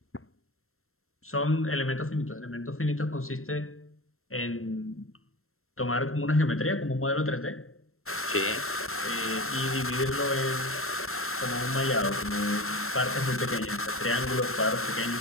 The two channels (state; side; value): late; right; 0.62 ms